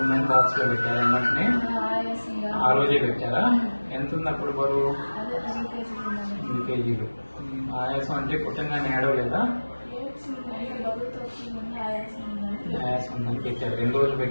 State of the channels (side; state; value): both; inverted; correlation -1.00